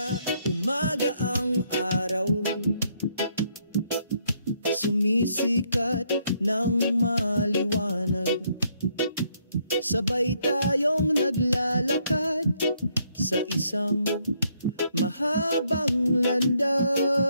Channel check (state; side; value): inverted; both; correlation -0.72